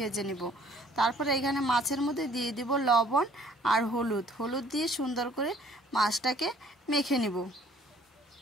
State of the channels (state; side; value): normal; both; correlation 0.58